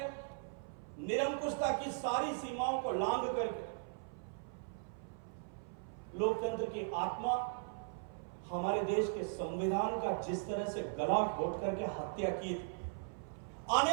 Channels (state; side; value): silent; left; 52 dB below the other